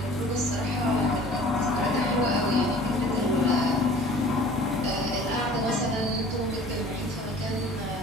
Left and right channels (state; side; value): normal; both; correlation 0.47